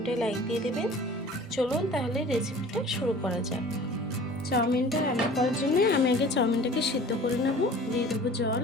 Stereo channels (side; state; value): both; normal; correlation 0.45